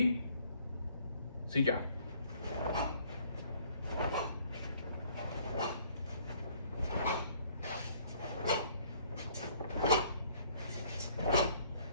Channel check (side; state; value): both; inverted; correlation -0.60